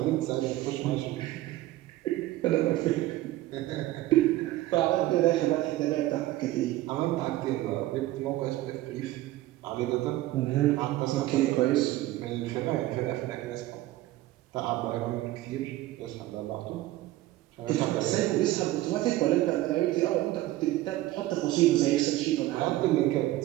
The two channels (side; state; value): left; quieter; 16.2 dB